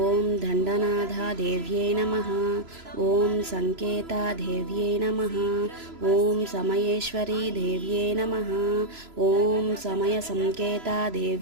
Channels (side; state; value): left; late; 3.0 ms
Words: దండనాథా దేవ్యే నమః. ఓం సంకేతా దేవ్యే నమః. ఓం సమయేశ్వరీ దేవ్యే నమః. ఓం సమయ సంకేతా